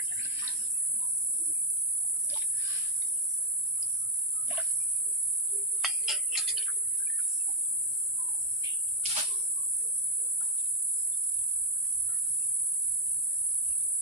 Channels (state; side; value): normal; both; correlation 0.01